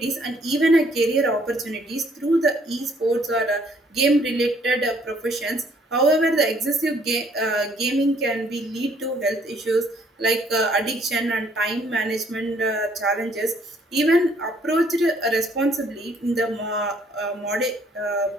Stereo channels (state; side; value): normal; both; correlation 0.64